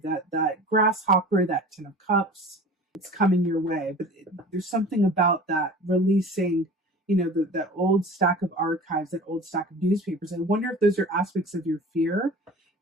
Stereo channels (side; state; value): both; normal; correlation 0.40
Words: That grasshopper, that 10 of cups, it's coming your way. But there's something about that releasing, you know, that old stack of archives, that old stack of newspapers. I wonder if those are aspects of your fear